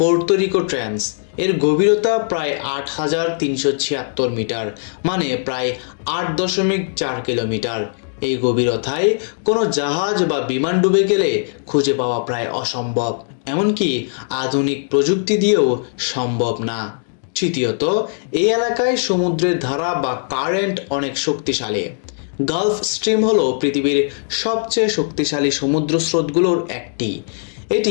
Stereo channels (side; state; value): right; silent; digital silence